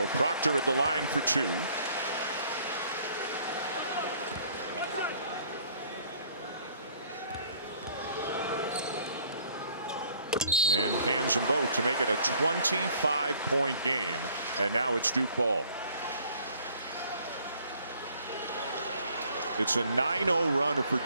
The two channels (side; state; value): both; inverted; correlation -0.59